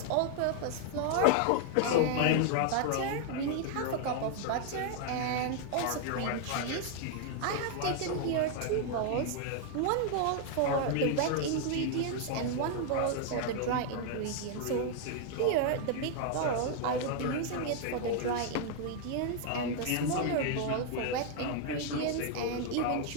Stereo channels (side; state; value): both; different; correlation 0.00